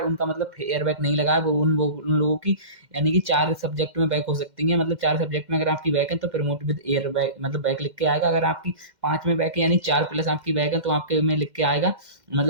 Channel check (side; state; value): left; late; 2.1 ms